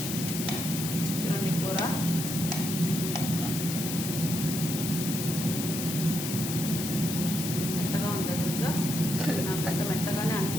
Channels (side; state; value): left; noise; hiss, 4 dB below the sound